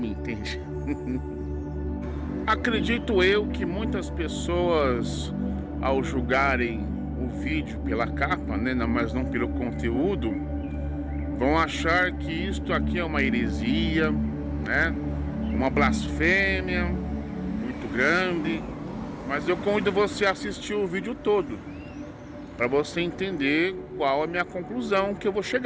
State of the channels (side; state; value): both; identical; correlation 1.00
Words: entende. Acredito eu que muitas pessoas, ao julgarem o vídeo pela capa, né, mas não pelo conteúdo, vão achar que isto aqui é uma heresia, né, uma blasfêmia muito grande. Mas eu convido você a assistir o vídeo todo, para você entender qual é a minha conclusão que eu vou